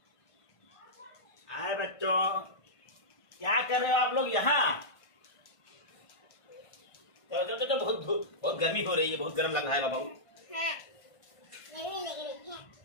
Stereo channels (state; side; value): late; right; 1.5 ms